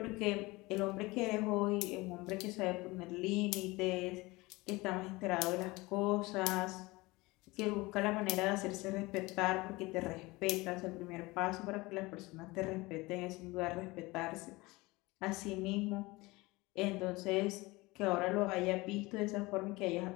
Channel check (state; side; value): quieter; right; 22.3 dB